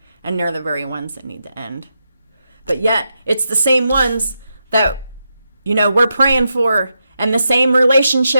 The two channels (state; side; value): inverted; both; correlation -0.85